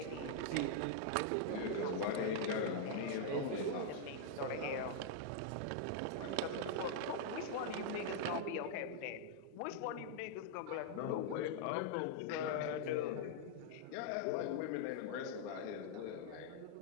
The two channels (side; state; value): both; different; correlation -0.01